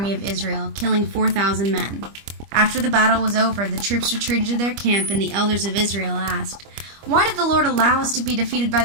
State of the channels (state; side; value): late; left; 25 ms